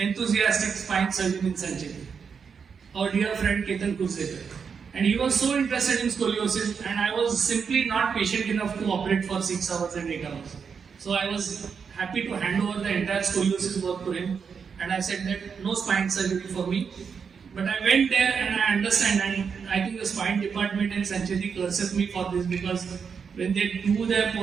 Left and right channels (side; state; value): left; quieter; 6.2 dB